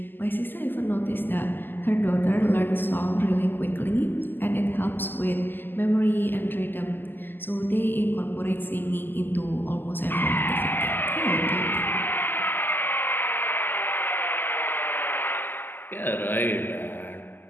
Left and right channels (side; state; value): right; late; 0.092 ms